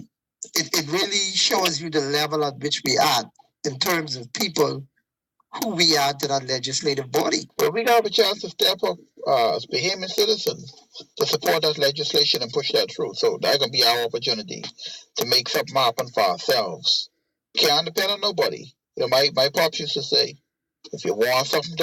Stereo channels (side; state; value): both; identical; correlation 1.00